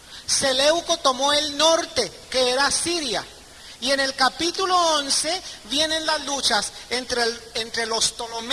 Seleuco tomó el norte, que era Siria. Y en el capítulo 11 vienen las luchas entre los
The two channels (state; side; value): identical; both; correlation 1.00